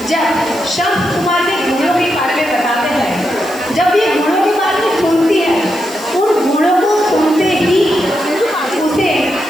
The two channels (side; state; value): right; noise; hiss, 19 dB below the sound